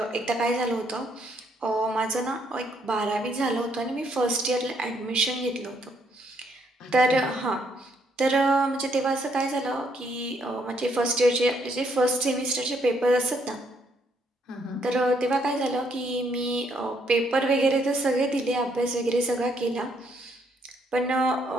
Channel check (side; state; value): both; normal; correlation 0.71